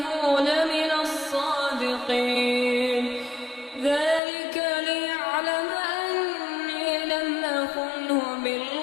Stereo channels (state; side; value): drops out; right; at 4.2 s